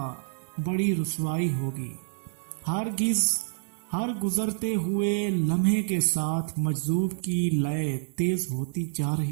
بڑی رسوائی ہوگی۔ ہر گزرتے ہوئے لمحے کے ساتھ مجذوب کی لے تیز ہوتی جا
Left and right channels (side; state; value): left; silent; digital silence